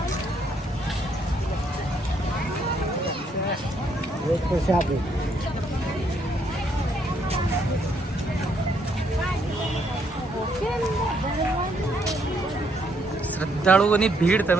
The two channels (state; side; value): normal; both; correlation 0.72